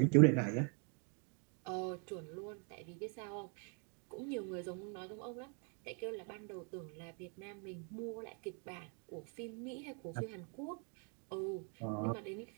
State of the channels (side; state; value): left; quieter; 39.5 dB